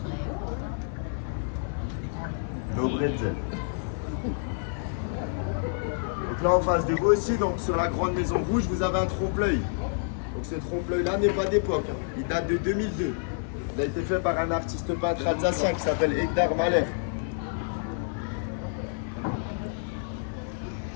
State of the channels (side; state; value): right; silent; 59 dB below the other